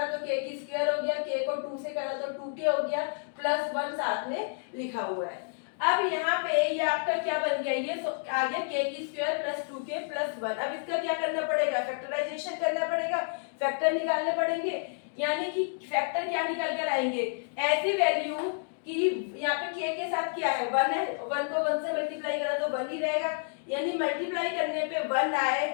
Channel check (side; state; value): right; silent; digital silence